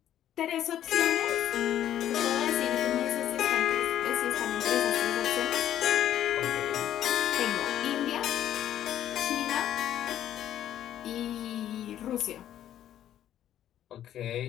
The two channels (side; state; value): right; quieter; 11.3 dB